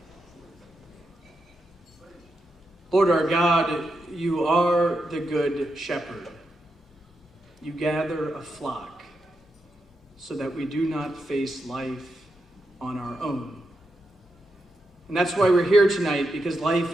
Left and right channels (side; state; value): both; normal; correlation 0.85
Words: Lord our God, you are the good shepherd. You gather a flock so that we do not face life on our own. And that's why we're here tonight, because life